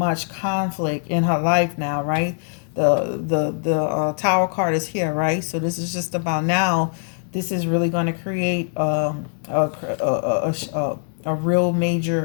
conflict in her life now, right? The Tower card is here, right? So this is just about now. This is really going to create a real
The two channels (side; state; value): right; silent; digital silence